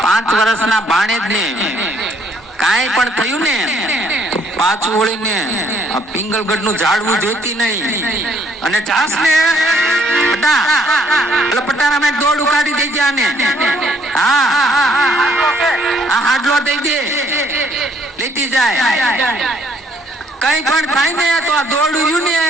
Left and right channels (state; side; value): normal; both; correlation 0.65